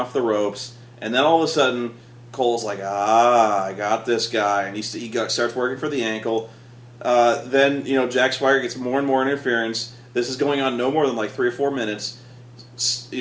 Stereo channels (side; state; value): both; identical; correlation 1.00